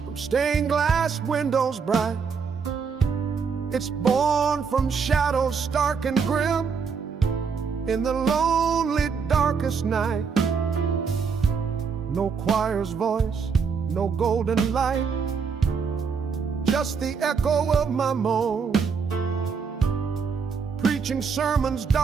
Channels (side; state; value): left; quieter; 5.8 dB